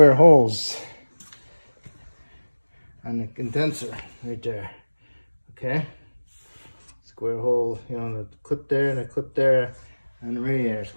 holes on the condenser right there. Okay? Square hole, you know, the clip there and the clip there on the radiator.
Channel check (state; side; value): inverted; both; correlation -1.00